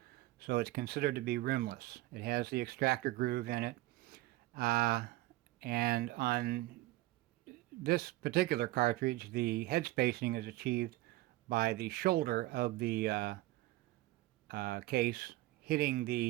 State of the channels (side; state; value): left; quieter; 18.1 dB